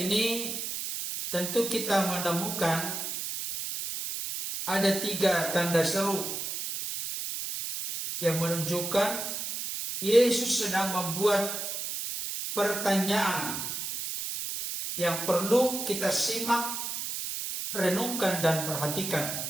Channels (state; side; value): noise; right; hiss, 4 dB below the sound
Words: tentu kita menemukan ada 3 tanda seru yang menunjukkan Yesus sedang membuat pertanyaan yang perlu kita simak, renungkan dan